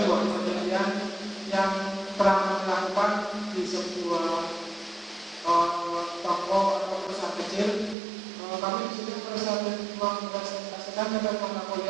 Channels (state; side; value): drops out; left; at 8.0 s